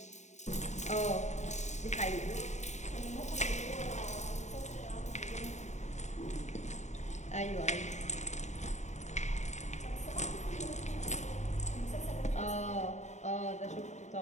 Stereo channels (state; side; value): late; right; 0.34 ms